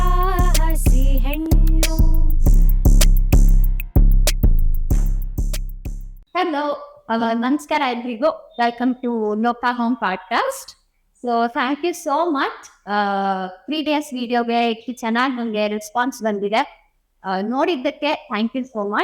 ಹೆಣ್ಣು. Hello, ನಮಸ್ಕಾರ ಎಲ್ರಿಗೂ. Welcome to Loka home podcast. So thank you so much. Previous ವಿಡಿಯೋಗೆ ಇಷ್ಟು ಚೆನ್ನಾಗಿ ನನಗೆ ರೆಸ್ಪಾನ್ಸ್ ಬಂದಿದೆ. ನೋಡಿದ್ದಕ್ಕೆ ಥ್ಯಾಂಕ್ ಯು ಸೋ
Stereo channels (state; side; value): identical; both; correlation 1.00